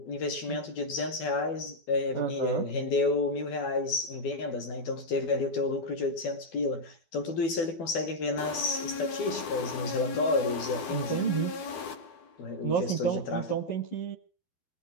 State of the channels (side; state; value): right; late; 12 ms